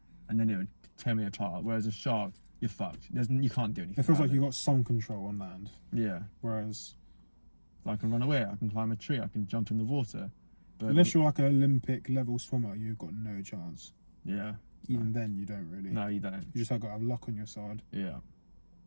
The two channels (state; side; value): inverted; both; correlation -1.00